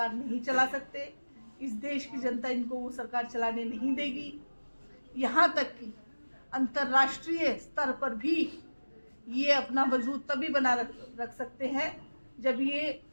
नहीं चला सकते। इस देश की जनता इनको वो सरकार चलाने नहीं देगी। यहाँ तक कि अंतर्राष्ट्रीय स्तर पर भी ये अपना वजूद तभी बना रख सकते हैं जब ये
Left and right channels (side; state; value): both; inverted; correlation -1.00